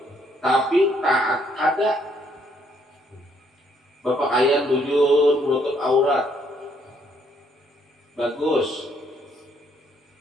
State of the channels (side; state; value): both; normal; correlation 0.69